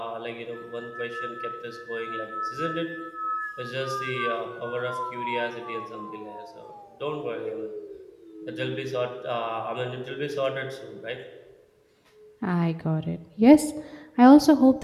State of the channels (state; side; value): identical; both; correlation 1.00